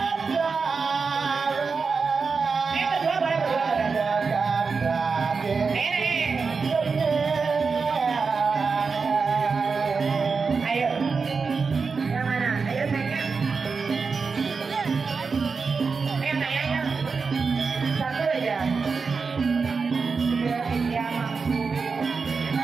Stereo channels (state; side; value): quieter; left; 4.9 dB